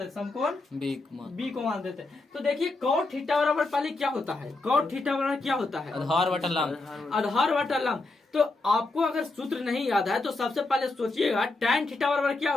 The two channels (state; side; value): quieter; right; 3.2 dB